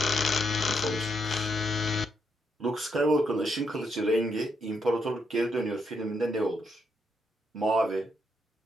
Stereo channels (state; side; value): normal; both; correlation 0.78